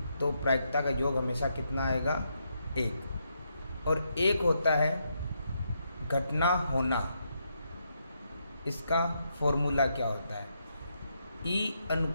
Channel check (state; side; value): inverted; both; correlation -0.79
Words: तो प्रायिकता का योग हमेशा कितना आएगा? एक। और एक होता है घटना होना। इसका फॉर्मूला क्या होता है? E